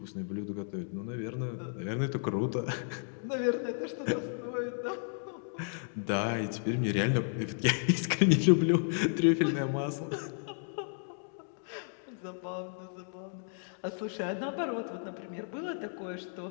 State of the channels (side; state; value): right; silent; digital silence